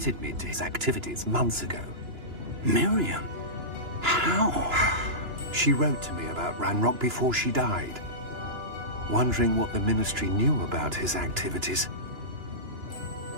me to his activities months ago. Miriam? How? She wrote to me about Ranrock before she died, wondering what the Ministry knew about his activities.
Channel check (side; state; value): left; late; 2.9 ms